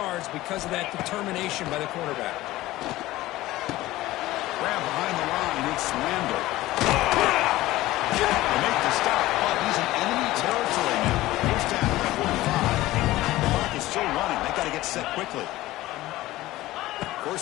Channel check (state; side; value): quieter; right; 17.0 dB